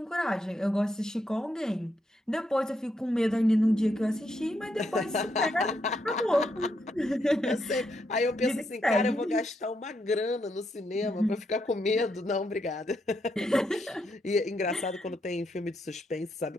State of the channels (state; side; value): normal; both; correlation 0.79